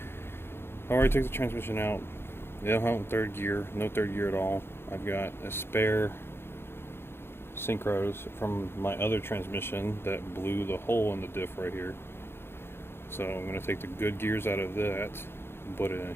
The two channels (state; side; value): late; right; 0.11 ms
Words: already took the transmission out. They don't have third gear, no third gear at all. I've got a spare synchros from my other transmission that blew the hole in the diff right here. So I'm going to take the good gears out of that and put it in